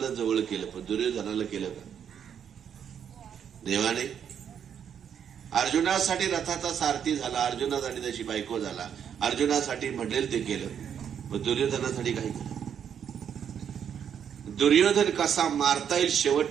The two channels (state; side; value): quieter; left; 8.3 dB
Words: जवळ केलं, पण दुर्योधनाला केलं का? देवाने अर्जुनासाठी रथाचा सारथी झाला, अर्जुनासाठी त्याची बायको झाला, अर्जुनासाठी म्हणेल ते केलं, पण दुर्योधनासाठी काय केलं? दुर्योधन कसा मारता येईल